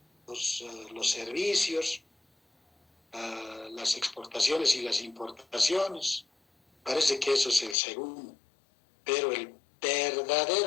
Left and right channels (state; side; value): drops out; right; at 7.8 s